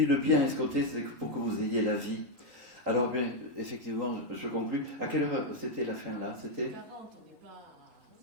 le bien escompté, c'est pour que vous ayez la vie. Alors bien, effectivement, je conclus. À quelle heure c'était la fin là ? C'était 40, on n'est pas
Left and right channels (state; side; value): late; left; 3.8 ms